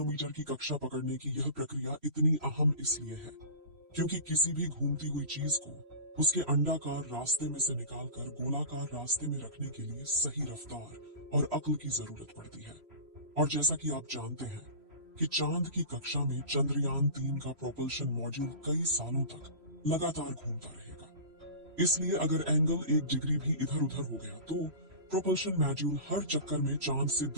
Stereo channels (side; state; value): left; late; 3.0 ms